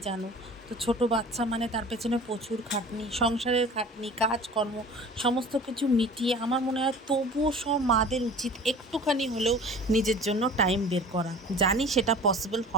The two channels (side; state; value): both; normal; correlation 0.42